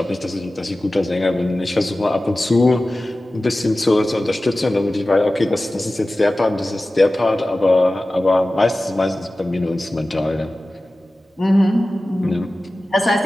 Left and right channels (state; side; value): normal; both; correlation 0.96